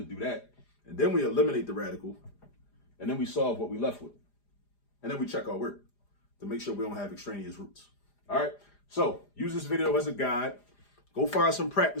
do that. And then we eliminate the radical, and then we solve what we left with. And then we check our work to make sure we don't have extraneous roots. All right, so use this video as a guide. Go find some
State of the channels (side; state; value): right; late; 4.9 ms